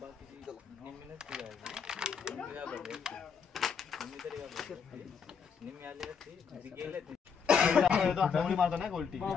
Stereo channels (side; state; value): right; quieter; 6.5 dB